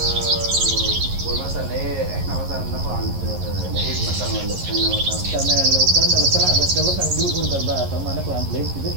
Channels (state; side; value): late; left; 11 ms